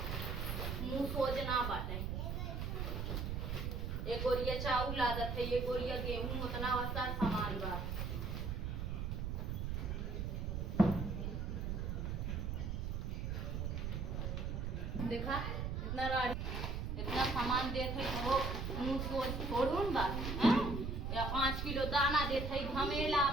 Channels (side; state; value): right; noise; rumble, 2 dB below the sound